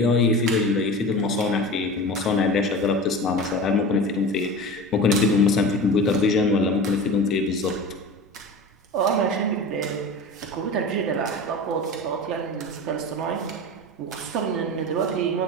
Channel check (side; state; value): both; normal; correlation 0.32